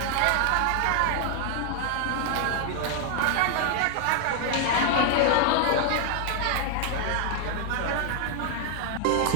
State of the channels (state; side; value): different; both; correlation 0.00